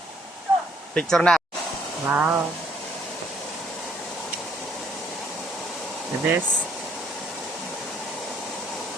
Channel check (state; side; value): normal; both; correlation 0.66